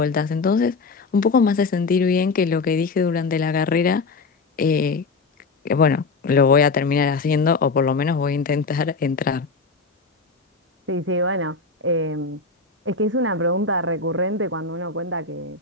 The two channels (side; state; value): right; quieter; 4.1 dB